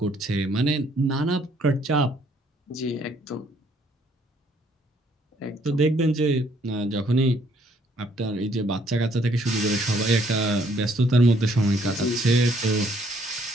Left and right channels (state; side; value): normal; both; correlation 0.65